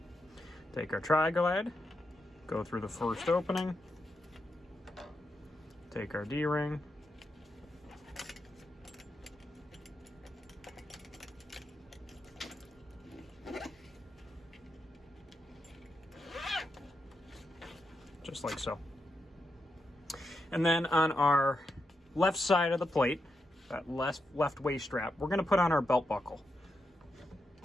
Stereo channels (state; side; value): normal; both; correlation 0.85